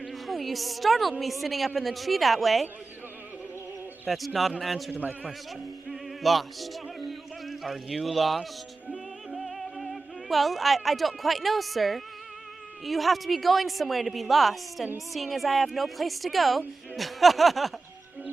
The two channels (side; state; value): left; quieter; 3.8 dB